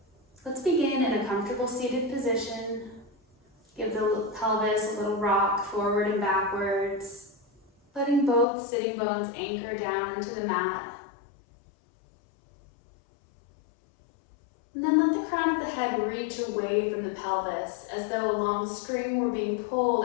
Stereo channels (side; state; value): right; drops out; at 8.5 s